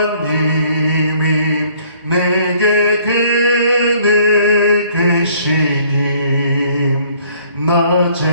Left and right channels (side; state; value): both; inverted; correlation -0.59